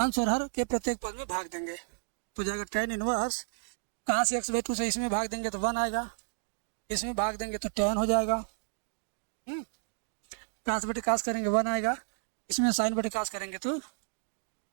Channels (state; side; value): silent; left; digital silence